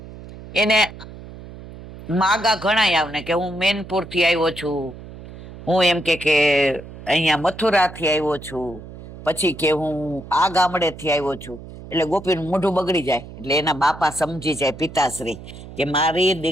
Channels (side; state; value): right; noise; hum, 15 dB below the sound